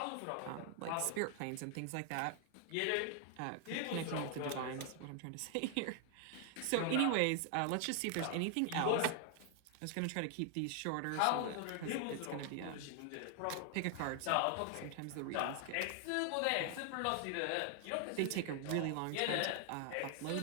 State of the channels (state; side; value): different; both; correlation 0.00